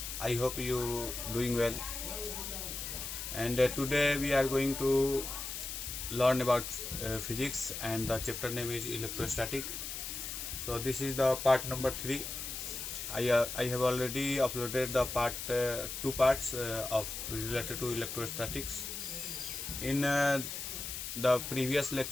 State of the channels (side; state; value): left; noise; hiss, 6 dB below the sound